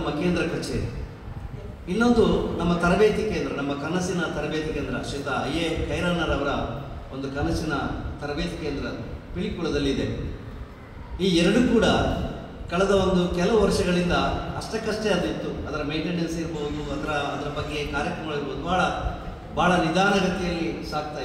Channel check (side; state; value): both; identical; correlation 1.00